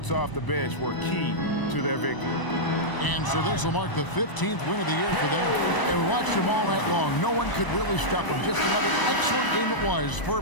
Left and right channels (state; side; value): late; right; 1.0 ms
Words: off the bench were key to their victory. And so this will mark the 15th win of the year for them. And we watched them all night long. No one could really stop them. Just another excellent game it was for